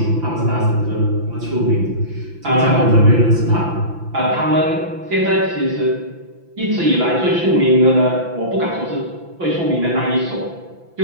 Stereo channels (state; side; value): late; left; 5.9 ms